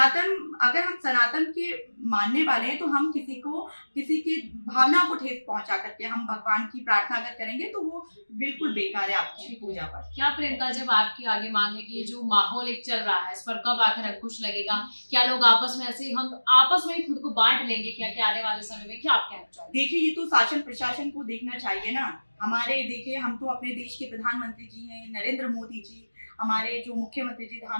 अगर हम सनातन के मानने वाले हैं तो हम किसी की भावना को ठेस पहुंचा करके हम भगवान की प्रार्थना अगर करेंगे तो वो बिल्कुल बेकार है आपकी पूजा पर। क्या प्रियंका, जब आपकी आगे मांग है कि ये जो माहौल एक चल रहा है इस पर कब आखिर अंकुश लगेगा? क्या लोग आपस में ऐसे हम आपस में ही खुद को बांट लेंगे क्या आने वाले समय में? क्या आप कहना चाहेंगे? देखिए ये तो शासन प्रशासन को देखना चाहिए ना। हमारे देखिए हम तो अपने देश के प्रधानमंत्री जी हैं नरेंद्र मोदी जी, हमारे जो मुख्यमंत्री जी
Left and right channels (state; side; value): inverted; both; correlation -1.00